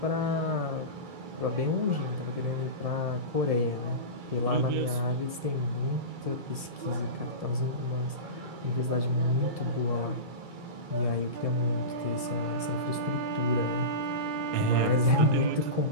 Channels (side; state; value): left; late; 1.7 ms